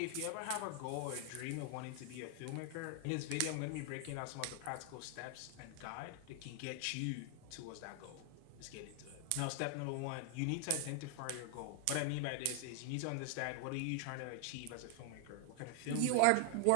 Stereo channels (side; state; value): both; different; correlation 0.00